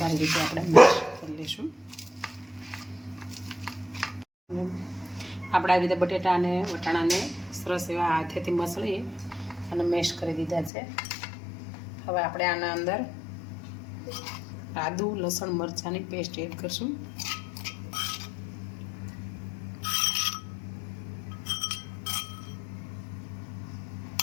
રીતે આપણે મેશ કરી લઈશું. આપણે આવી રીતે બટેટા અને વટાણાને સરસ એવા હાથેથી મસળી અને મેશ કરી દીધા છે. હવે આપણે આના અંદર આદુ લસણ મરચાંની પેસ્ટ એડ કરશું.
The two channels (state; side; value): drops out; right; at 10.7 s